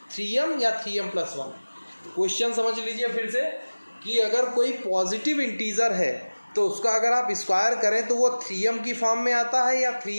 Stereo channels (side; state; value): both; inverted; correlation -1.00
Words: 3m या 3m प्लस 1। क्वेश्चन समझ लीजिए फिर से कि अगर कोई पॉजिटिव इंटीजर है तो उसका अगर आप स्क्वायर करें तो वो 3m की फॉर्म में आता है या